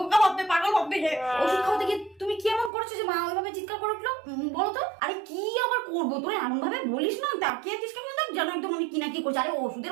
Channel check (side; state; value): left; drops out; at 2.7 s